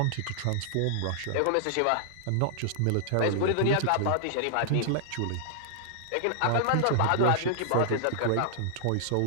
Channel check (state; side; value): different; both; correlation -0.01